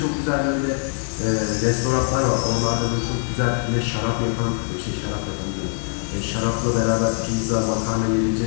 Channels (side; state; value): right; silent; digital silence